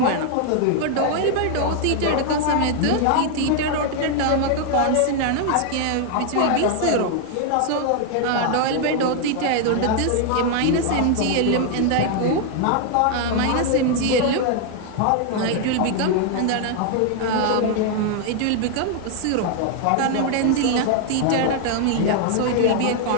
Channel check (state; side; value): different; both; correlation 0.00